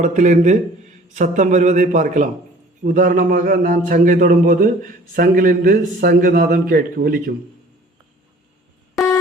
சத்தம் வருவதை பார்க்கலாம். உதாரணமாக நான் சங்கை தொடும்போது சங்கிலிருந்து சங்கு நாதம் ஒலிக்கும்.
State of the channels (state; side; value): normal; both; correlation 0.51